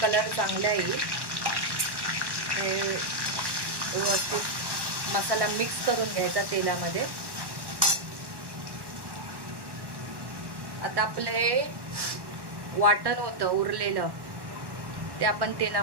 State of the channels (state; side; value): late; left; 1.1 ms